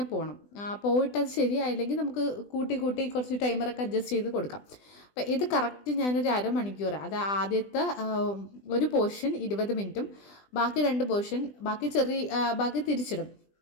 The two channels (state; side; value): late; right; 20 ms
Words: പോകണം. പോയിട്ടത് ശരിയായില്ലെങ്കിൽ നമുക്ക് കൂട്ടി കുറച്ച് ടൈമറൊക്കെ അഡ്ജസ്റ്റ് ചെയ്ത് കൊടുക്കാം. അപ്പോൾ ഇത് കറക്റ്റ് ഞാനൊരു അരമണിക്കൂർ, അത് ആദ്യത്തെ ഒരു പോർഷൻ 20 മിനിറ്റും ബാക്കി 2 പോർഷൻ ബാക്കി തിരിച്ചിടും.